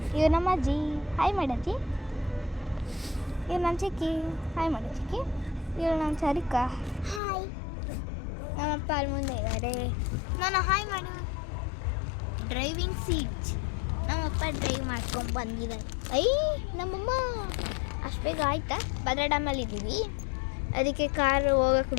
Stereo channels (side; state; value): right; drops out; at 7.2 s